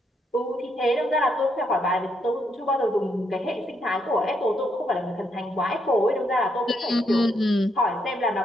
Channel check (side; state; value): both; normal; correlation 0.76